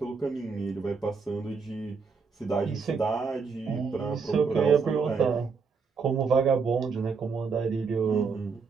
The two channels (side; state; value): left; quieter; 5.2 dB